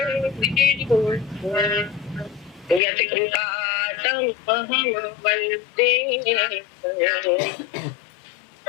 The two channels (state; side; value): drops out; right; at 2.8 s